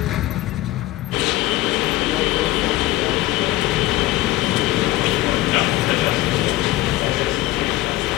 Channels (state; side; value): quieter; right; 17.1 dB